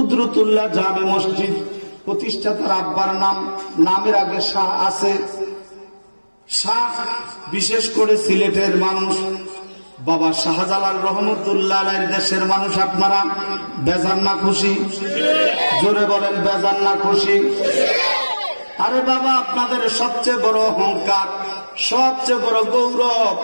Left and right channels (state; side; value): inverted; both; correlation -1.00